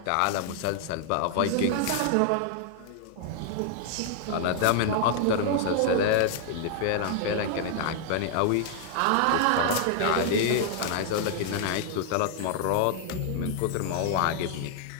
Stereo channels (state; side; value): different; both; correlation -0.01